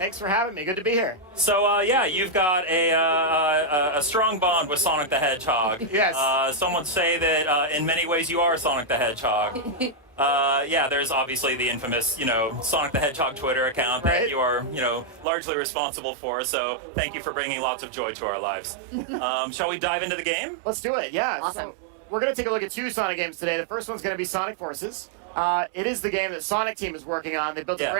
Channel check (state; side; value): drops out; left; at 15.2 s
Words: for having me. Good to be here. So, yeah, you've got a strong bond with Sonic the Hedgehog. Yes. Some would say that in many ways you are Sonic the Hedgehog. Yeah, there's obviously the infamous, Sonic the Hedgehog Twitter account that you are, largely responsible for. So thank you for bringing lots of joy to our lives. Shall we dive into the game? Let's do it. Yeah. Awesome. So we're going to take a look at two Sonic games today. The first one's going to be Sonic Forces. It is the game that Sonic Team is working on. They built a